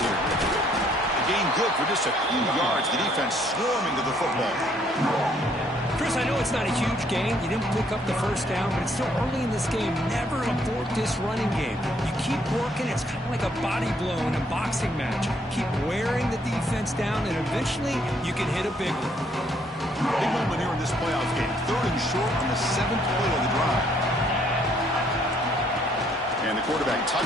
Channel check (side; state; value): both; normal; correlation 0.67